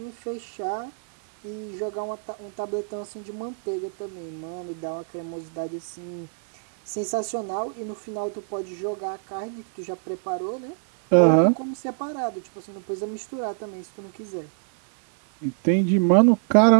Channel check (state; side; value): silent; left; digital silence